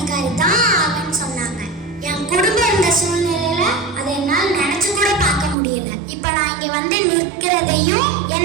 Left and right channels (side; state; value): left; drops out; at 5.6 s